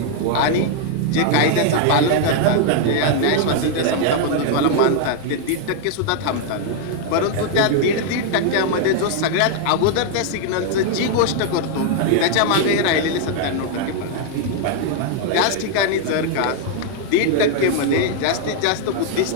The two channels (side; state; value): both; different; correlation 0.00